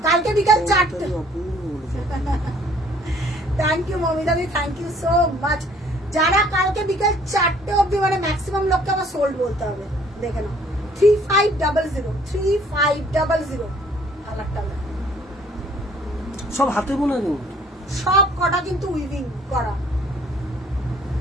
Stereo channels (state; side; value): normal; both; correlation 0.58